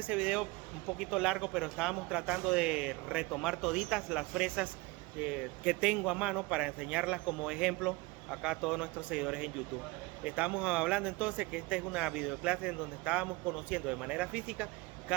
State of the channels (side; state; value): left; quieter; 23.2 dB